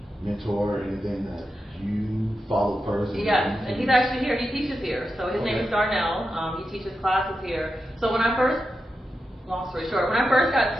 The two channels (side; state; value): both; normal; correlation 0.89